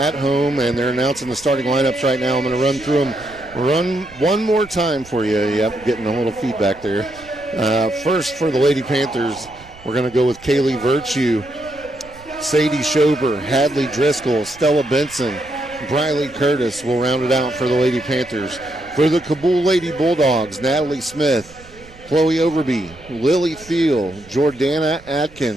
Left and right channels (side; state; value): right; noise; rumble, 22 dB below the sound